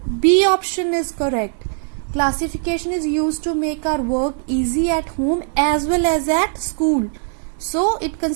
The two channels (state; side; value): silent; left; 55 dB below the other